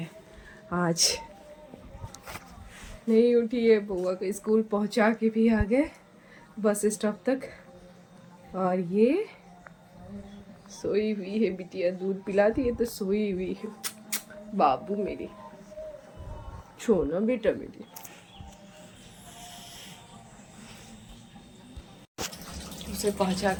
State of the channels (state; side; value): identical; both; correlation 1.00